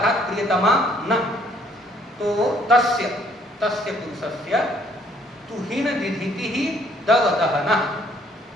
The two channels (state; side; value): normal; both; correlation 0.63